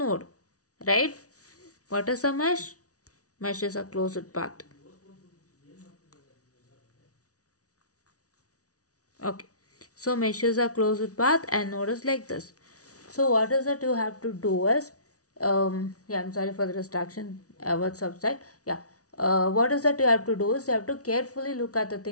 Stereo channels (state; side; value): late; right; 0.67 ms